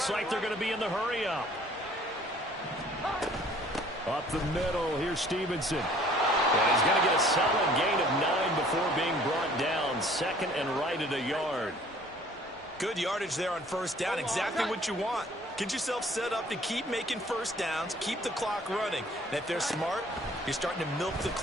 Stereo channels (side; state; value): both; normal; correlation 0.55